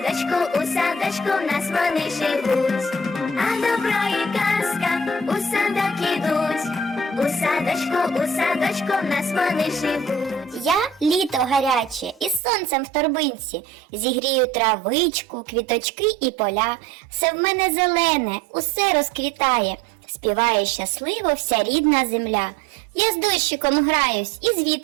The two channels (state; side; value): drops out; left; at 12.4 s